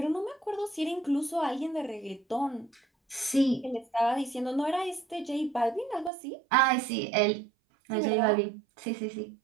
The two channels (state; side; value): drops out; left; at 6.1 s